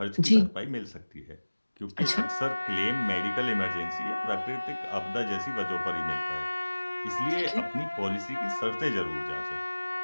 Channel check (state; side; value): inverted; both; correlation -1.00